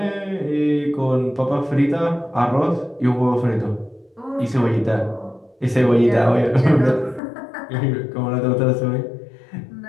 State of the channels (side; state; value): right; drops out; at 7.2 s